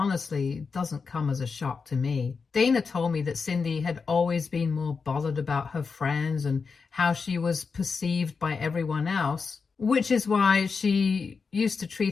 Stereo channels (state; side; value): quieter; right; 5.1 dB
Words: doesn't come as a shock to me. Dana told me that Cindy had always been more bothered about her friends and how she was perceived by everyone else, which is why she used to